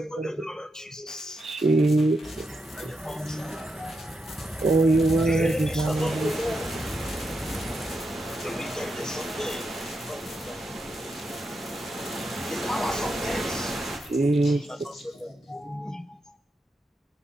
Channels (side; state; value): both; normal; correlation 0.84